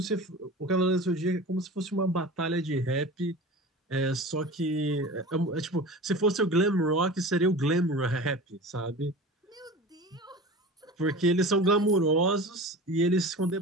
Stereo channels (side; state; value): both; normal; correlation 0.35